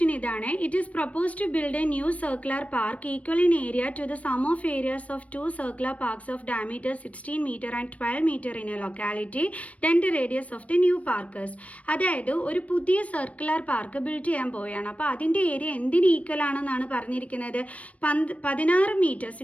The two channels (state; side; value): late; right; 0.066 ms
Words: ഇതാണ്. It is propose to build a new circular park equal in area to the sum of areas of 2 circular parks of diameter 16 metre and 12 metre in a locality. Then the radius of the new parkers. അതായത് ഒരു പുതിയ circular park build ചെയ്യാൻ പോവുകയാണ്. അപ്പോൾ അതിൻ്റെ area എന്തിന് equal ആണെന്നാണ് പറഞ്ഞിരിക്കുന്നത്? 16 മീറ്റർ